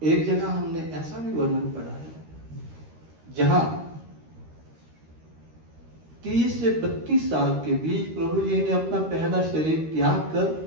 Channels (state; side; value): late; left; 13 ms